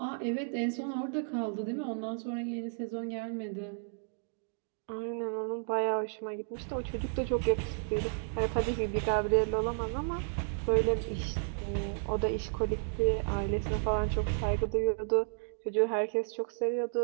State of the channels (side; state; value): left; silent; digital silence